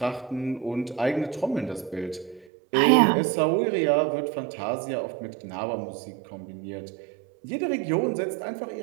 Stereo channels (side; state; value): left; drops out; at 2.5 s